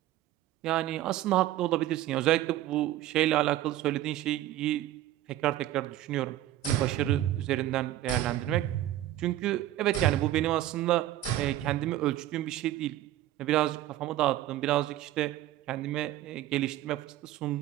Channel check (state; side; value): quieter; left; 14.1 dB